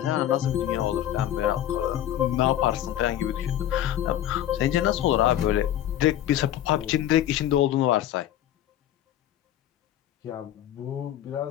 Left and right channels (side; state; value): right; quieter; 12.0 dB